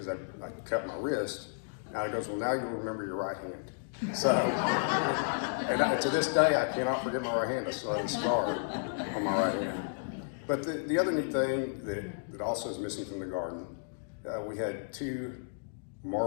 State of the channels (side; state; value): right; silent; digital silence